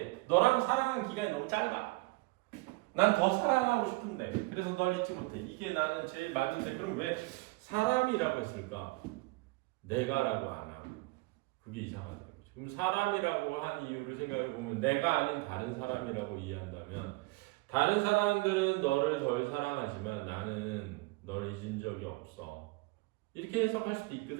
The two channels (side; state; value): left; quieter; 23.9 dB